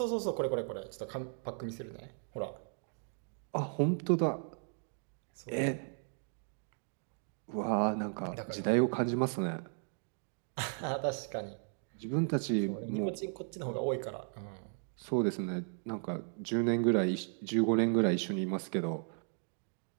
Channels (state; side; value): silent; left; 54 dB below the other